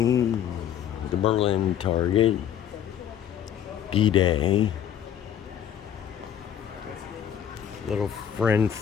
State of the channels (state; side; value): quieter; right; 9.5 dB